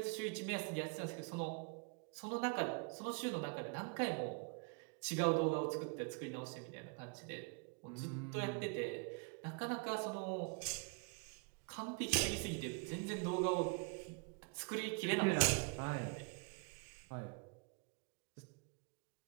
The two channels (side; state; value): left; quieter; 32.2 dB